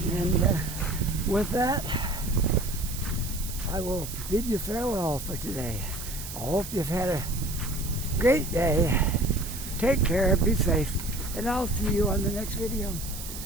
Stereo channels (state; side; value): noise; right; hiss, 10 dB below the sound